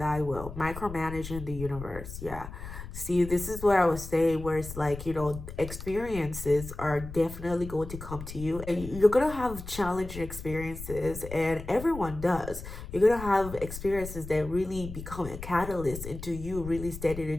will, micromanaging the universe. Yeah. See, this is where I was saying where it's like, experiences are definitely going to come to you and you're going to have challenging experiences, and everyone does. You're going to have experiences that really become a catalyst into you really stepping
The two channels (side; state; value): left; noise; rumble, 11 dB below the sound